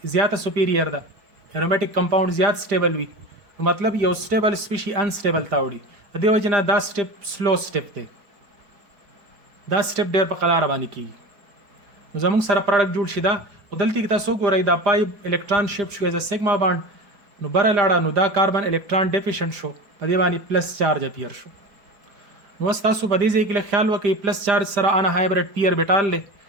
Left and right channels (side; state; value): left; late; 5.0 ms